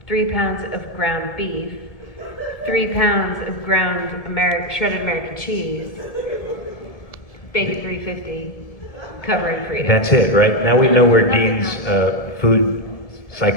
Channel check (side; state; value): right; late; 1.7 ms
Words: of ground beef, 3 pounds of ground shredded American cheese, bacon 350, covering freedom. That's it, right? Now we know where Dean's food